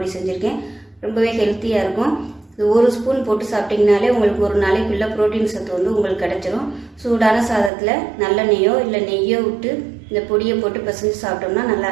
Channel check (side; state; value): left; drops out; at 7.7 s